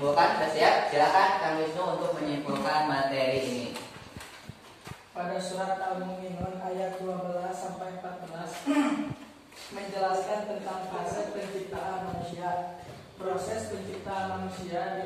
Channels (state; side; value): identical; both; correlation 1.00